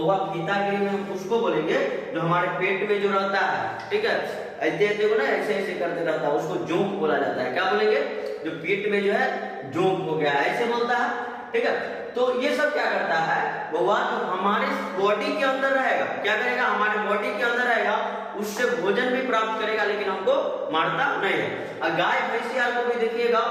फीता कृमि हम उसको बोलेंगे जो हमारे पेट में जो रहता है, ठीक है, ऐसे को ना ऐसे ऐसे करते रहता है, उसको जोंक बोला जाता है। क्या बोलेंगे, जो पेट में जो है जोंक हो गया ऐसे बोलता है, ठीक है। तो ये सब क्या करता है, बउआ जो हमारे बॉडी के अंदर रहेगा, क्या करेगा, हमारे बॉडी के अंदर रहेगा, उससे भोजन भी प्राप्त करेगा लेकिन हमको मारता नहीं है। और गाय भैंसिया को भी देखिएगा,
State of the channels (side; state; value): both; identical; correlation 1.00